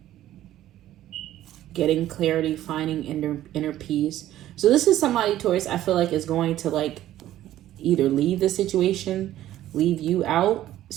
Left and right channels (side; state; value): left; quieter; 13.3 dB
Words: Getting clarity, finding inner peace. So this is somebody, Taurus, I feel like is going to like either leave the situation, leave you out